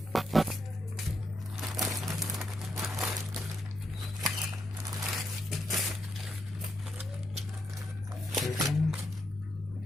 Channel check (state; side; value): normal; both; correlation 0.80